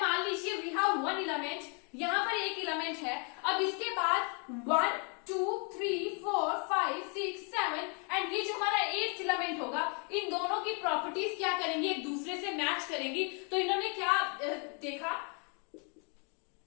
लीजिए वी हैव वन एलिमेंट, यहां पर एक एलिमेंट है, अब इसके बाद 1 2 3 4 5 6 7 एंड ये जो हमारा एट्थ एलिमेंट होगा, इन दोनों की प्रॉपर्टीज क्या करेंगी, एक दूसरे से मैच करेंगी। तो इन्होंने क्या देखा,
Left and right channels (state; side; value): quieter; right; 37.5 dB